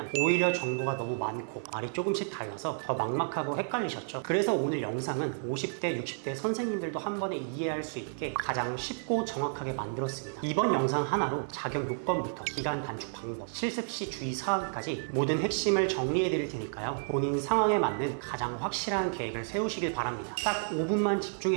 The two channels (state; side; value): silent; left; digital silence